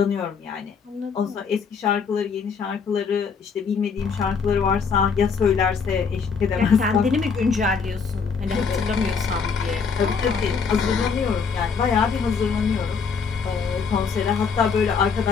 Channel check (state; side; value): quieter; right; 5.7 dB